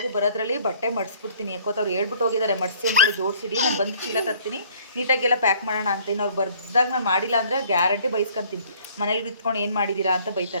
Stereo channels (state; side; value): inverted; both; correlation -0.57